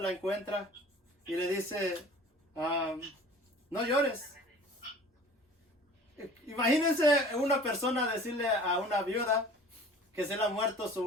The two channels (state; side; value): normal; both; correlation 0.45